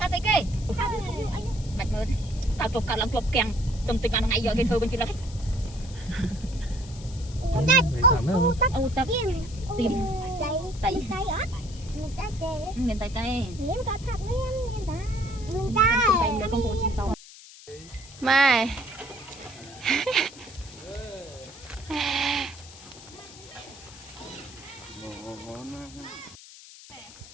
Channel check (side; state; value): left; noise; hiss, 18 dB below the sound